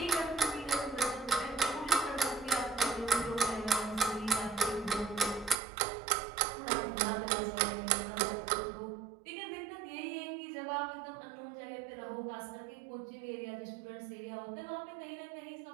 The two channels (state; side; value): drops out; left; at 5.6 s